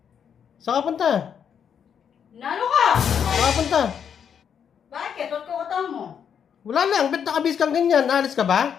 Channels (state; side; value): quieter; right; 7.8 dB